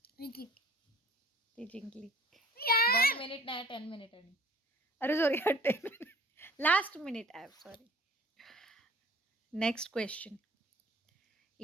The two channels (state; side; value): normal; both; correlation 0.50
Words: ती जिंकली. 1 मिनिट नाही 10 मिनिट आहे. अरे sorry 10 minute. Last minute app sorry. Next question.